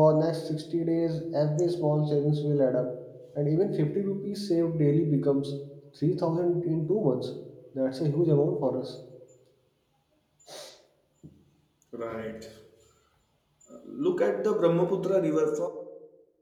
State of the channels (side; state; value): both; identical; correlation 1.00